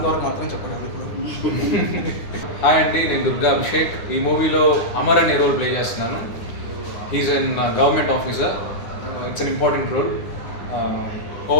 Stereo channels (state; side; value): late; right; 9.7 ms